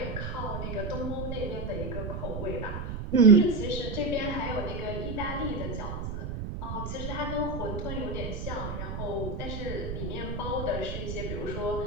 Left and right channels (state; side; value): noise; right; rumble, 5 dB below the sound